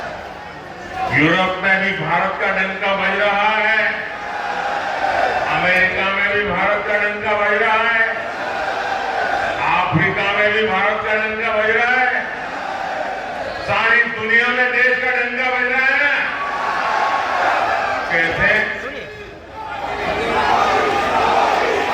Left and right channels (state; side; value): identical; both; correlation 1.00